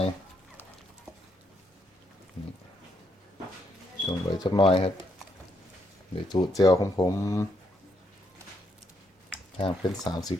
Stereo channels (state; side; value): normal; both; correlation 0.75